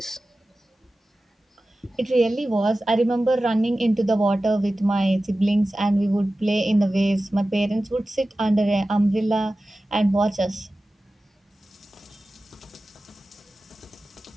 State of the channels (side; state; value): both; normal; correlation 0.95